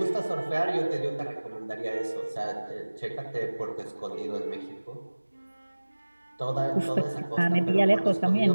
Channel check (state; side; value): inverted; both; correlation -1.00